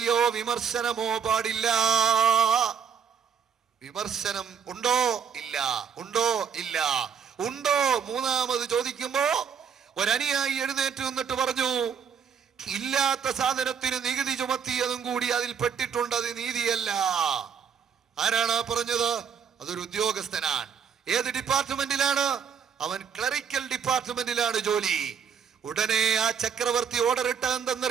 വിമർശനമോ പാടില്ല. വിമർശനം ഉണ്ടോ? ഇല്ല. ഉണ്ടോ? ഇല്ല. ഉണ്ടോ? മൂന്നാമത് ചോദിക്കുമ്പോ ഒരനുയായി എഴുന്നേറ്റ് നിന്നിട്ട് പറഞ്ഞു, ഇല്ലാത്ത സാധനത്തിന് നികുതി ചുമത്തിയതും കൂടി അതിൽ പെട്ടിട്ടുണ്ട്, അത് നീതിയല്ല. ആരാണ് പറഞ്ഞത്? അതൊരു ഉദ്യോഗസ്ഥനാണ്. ഏത് ഡിപ്പാർട്ട്മെന്റിലാണ്? അവൻ ക്ലറിക്കൽ ഡിപ്പാർട്ട്മെന്റിലാണ് ജോലി. ഉടനെ ആ ചക്രവർത്തി ഓർഡർ ഇട്ട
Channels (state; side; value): quieter; left; 7.1 dB